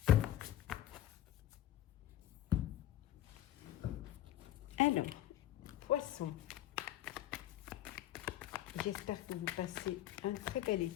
Alors, Poisson, j'espère que vous passez un très bel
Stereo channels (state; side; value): quieter; right; 12.9 dB